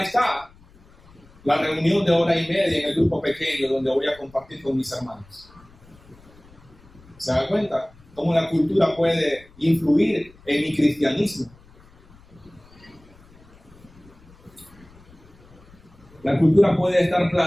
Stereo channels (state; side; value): noise; left; rumble, 26 dB below the sound